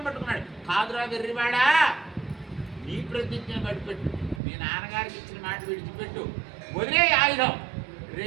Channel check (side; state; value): left; drops out; at 4.4 s